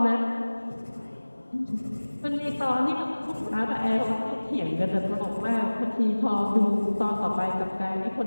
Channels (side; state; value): both; inverted; correlation -1.00